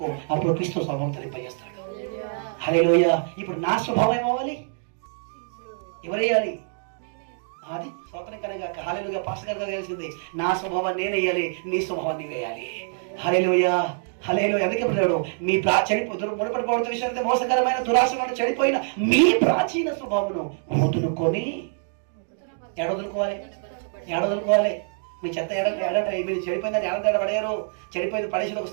అప్పుడు క్రీస్తు స్వభావం ధరింపజేస్తాడు. హల్లెలూయా. ఇప్పుడు నా స్వభావం ఏమవ్వాలి? ఎవరేయాలి? అది స్వతంత్రం కనుక హల్లెలూయా. పాస్టర్ గారు తెలిసింది, నా స్వభావం నేనేయాలి, నీ స్వభావాన్ని వేయాలి. హల్లెలూయా. హల్లెలూయా. అందుకే చెప్పాడు, మీ మునపడిపోవడం విషయం మోసకరమైన దురాశలను చెడిపోయిన మీ ప్రాచీన స్వభావమును వదులుకొని ఏడవదులుకోవాలి. మీ చెత్త మీరు చెడిపోయిందని ఏడ పడేయరు. చెడిపోయింది పడేసిన ఒక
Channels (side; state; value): left; silent; digital silence